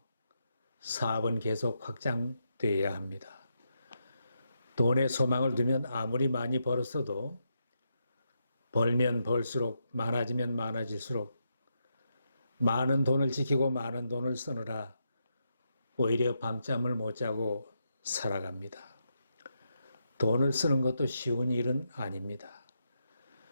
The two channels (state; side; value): inverted; both; correlation -0.83